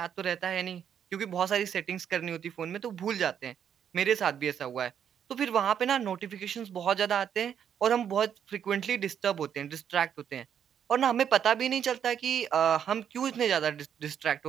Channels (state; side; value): quieter; left; 8.6 dB